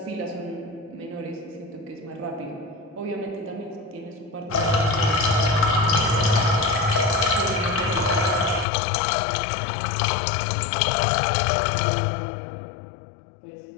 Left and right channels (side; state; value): right; drops out; at 8.7 s